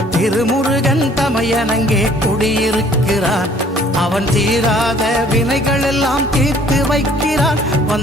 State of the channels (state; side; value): normal; both; correlation 0.57